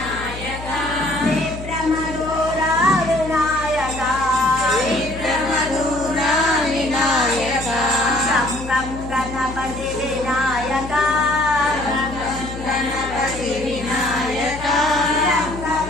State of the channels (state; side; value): noise; left; hum, 11 dB below the sound